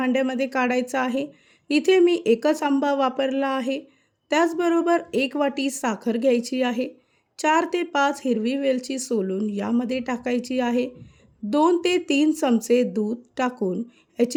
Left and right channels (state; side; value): identical; both; correlation 1.00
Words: काढायचा आहे. इथे मी एकच आंबा वापरला आहे. त्याचबरोबर 1 वाटी साखर घ्यायची आहे. 4 ते 5 हिरवी वेलची सोलून यामध्ये टाकायची आहे. 2 ते 3 चमचे दूध टाकून